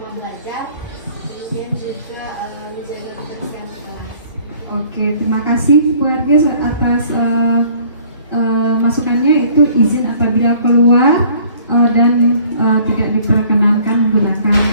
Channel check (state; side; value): inverted; both; correlation -0.55